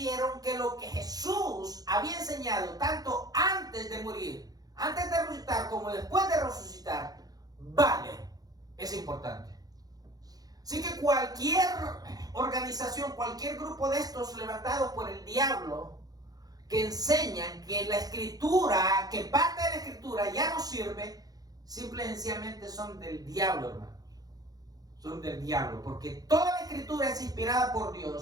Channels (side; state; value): left; late; 0.18 ms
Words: que lo que Jesús había enseñado, tanto antes de morir, antes de resucitar como después de resucitar, vale, es importante. Así que cualquier organización, cualquier grupo de estos levantados por el diablo, que enseñan que la escritura, que parte de la escritura ya no sirve, simple y sencillamente son del diablo, hermanos. Son del diablo, porque toda la escritura es inspirada por